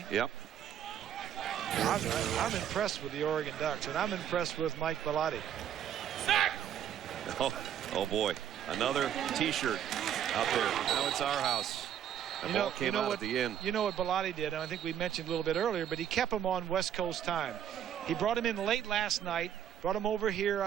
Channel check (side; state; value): left; quieter; 9.7 dB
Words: Yep. I'm impressed with the Oregon Ducks, and I'm impressed with Mike Bellotti. Oh boy, another T-shirt out there. Now it's our house. The ball came out at the end. You know what Bellotti did, and I think we mentioned a little bit earlier, but he kept him on West Coast time. He brought him in late last night, brought him over here,